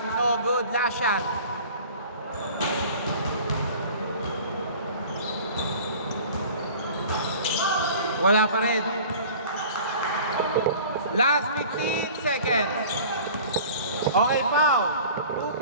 no good. Last shot. Wala pa rin. Last 15 seconds. Okay, foul. 2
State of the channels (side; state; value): both; inverted; correlation -0.44